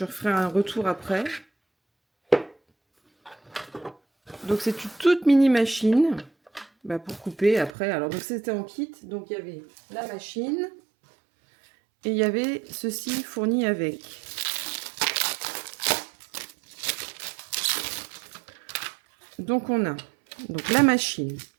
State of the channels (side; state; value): left; drops out; at 7.7 s